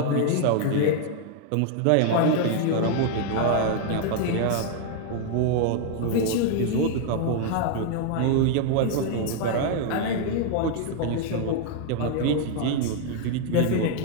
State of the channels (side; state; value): both; different; correlation 0.00